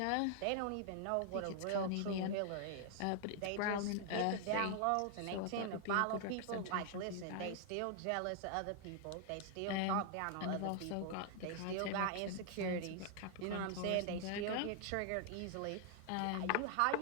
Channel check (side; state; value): both; different; correlation 0.00